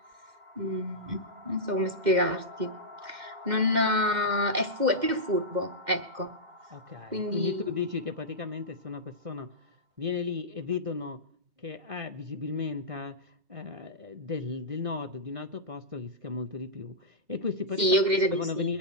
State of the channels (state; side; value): late; left; 2.1 ms